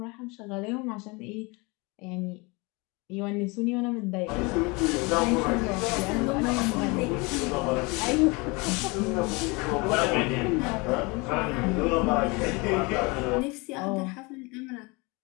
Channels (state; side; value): quieter; right; 27.1 dB